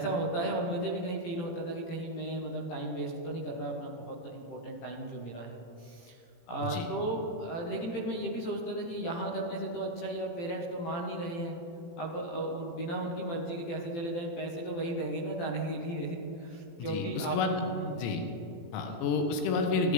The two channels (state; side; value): late; right; 18 ms